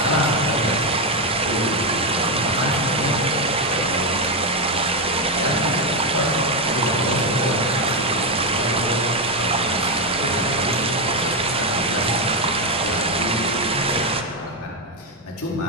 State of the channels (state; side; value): normal; both; correlation 0.07